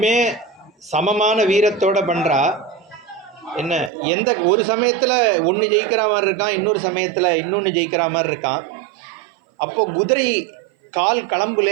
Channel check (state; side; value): drops out; left; at 3.9 s